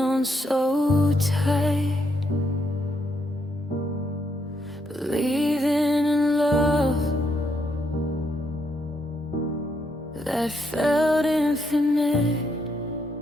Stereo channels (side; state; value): both; normal; correlation 0.77